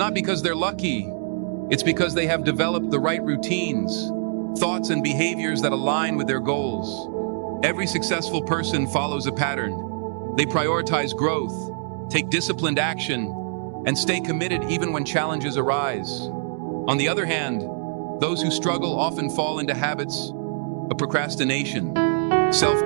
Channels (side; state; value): left; silent; digital silence